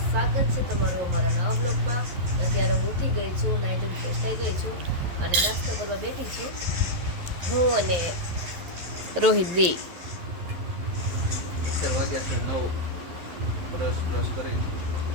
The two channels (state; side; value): late; left; 11 ms